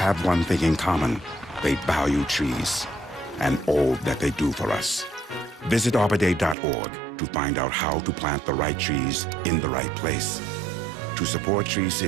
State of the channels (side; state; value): left; drops out; at 6.6 s